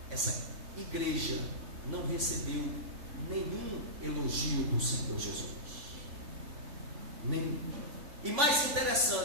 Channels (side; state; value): left; late; 3.4 ms